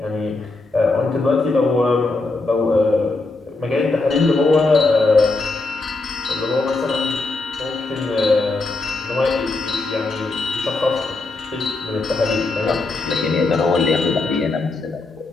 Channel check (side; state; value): right; quieter; 3.4 dB